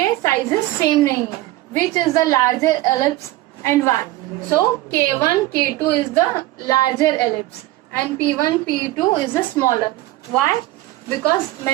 साइजेस सेम नहीं है. Which is the larger ellipse and why? So K1 K2 is the larger ellipse and P1 P2 is the smaller. Why? Because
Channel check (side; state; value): left; quieter; 16.7 dB